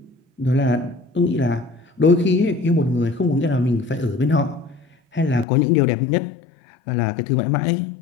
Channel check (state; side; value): drops out; right; at 5.5 s